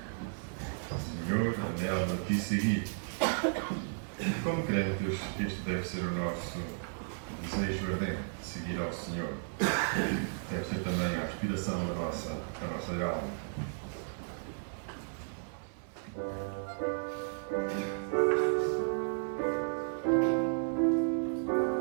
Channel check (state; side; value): silent; left; 55 dB below the other